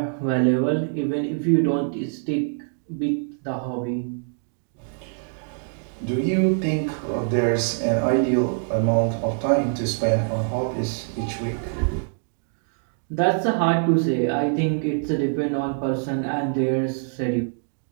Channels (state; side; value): silent; left; digital silence